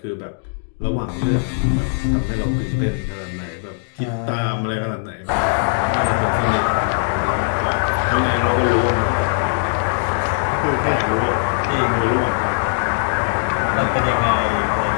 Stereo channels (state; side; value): silent; right; digital silence